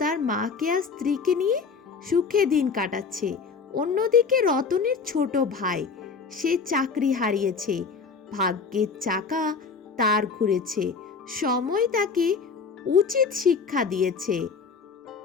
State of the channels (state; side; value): quieter; right; 5.1 dB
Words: মাকে আর স্ত্রীকে নিয়ে সুখে দিন কাটাচ্ছে। অন্যদিকে রতনের ছোট ভাই, সে চাকরি হারিয়েছে। ভাগ্যের চাকা তার ঘুরেছে, সময় তাকে উচিত শিক্ষা দিয়েছে।